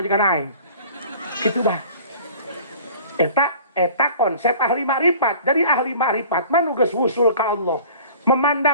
aing. Gitu bah. Eta konsep ahli makrifat. Jadi ahli makrifat mah nu geus wusul ka Allah.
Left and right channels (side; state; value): both; inverted; correlation -0.46